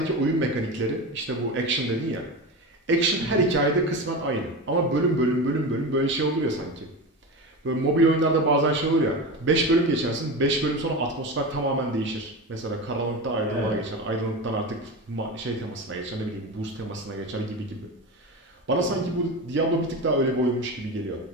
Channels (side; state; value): both; normal; correlation 0.24